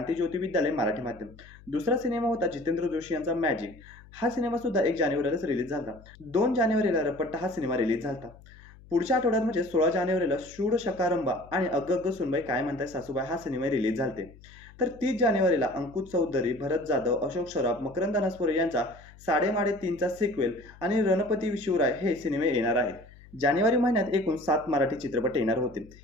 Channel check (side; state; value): left; noise; hum, 22 dB below the sound